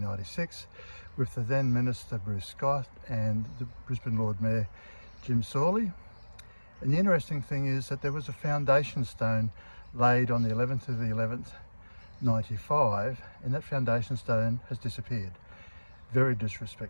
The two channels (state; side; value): inverted; both; correlation -1.00